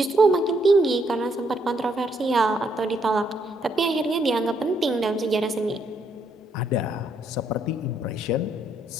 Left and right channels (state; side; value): normal; both; correlation 0.73